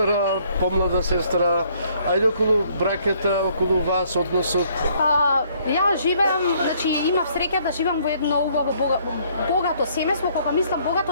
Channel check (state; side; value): inverted; both; correlation -0.64